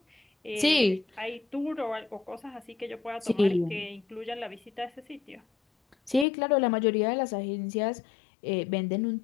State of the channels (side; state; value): right; drops out; at 6.2 s